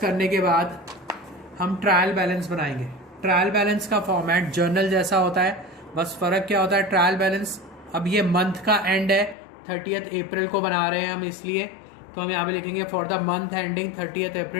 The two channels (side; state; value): right; drops out; at 9.3 s